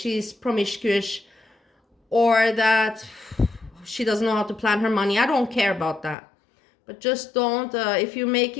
promiscuous, or that she doesn't know how to plan her money. I don't care about that. But just don't, if you're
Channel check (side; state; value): right; drops out; at 6.2 s